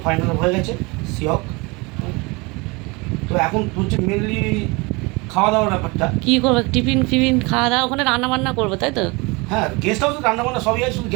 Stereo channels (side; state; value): left; quieter; 26.4 dB